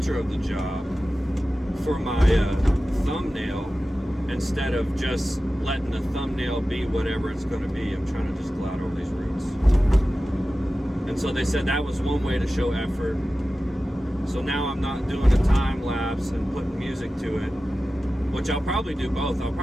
of the job for my thumbnail, instead of just letting the thumbnail be whatever it's going to be. I'm trying to just glide over these roots. And so they said that was one way to show effort. So now I'm not doing a time lapse and putting music to it, which I'll probably do both. I'll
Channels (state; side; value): normal; both; correlation 0.95